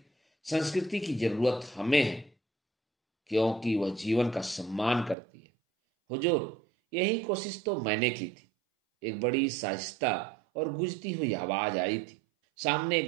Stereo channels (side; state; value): left; drops out; at 5.2 s